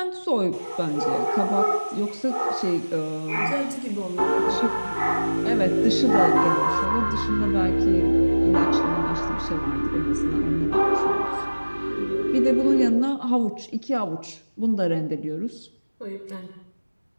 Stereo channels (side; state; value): both; inverted; correlation -1.00